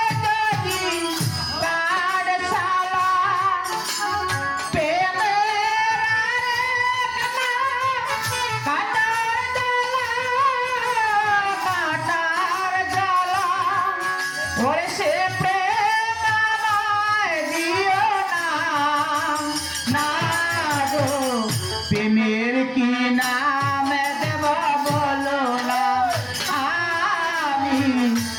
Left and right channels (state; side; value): identical; both; correlation 1.00